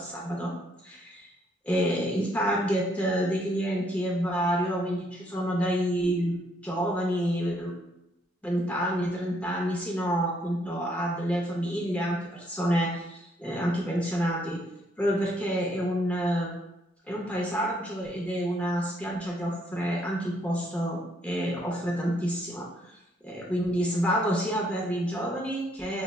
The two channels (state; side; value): normal; both; correlation 0.70